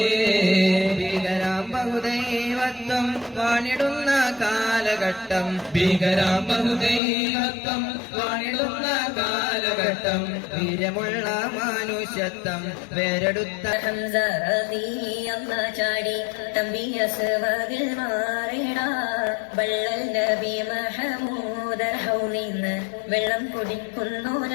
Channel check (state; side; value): drops out; right; at 7.0 s